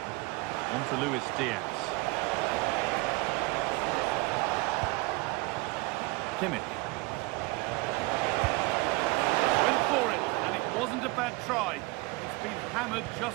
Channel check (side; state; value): left; quieter; 24.1 dB